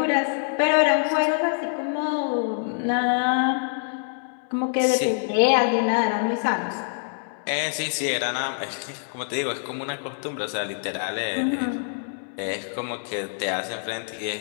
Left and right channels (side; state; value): right; silent; 62 dB below the other